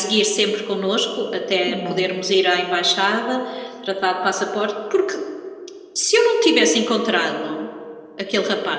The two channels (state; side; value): identical; both; correlation 1.00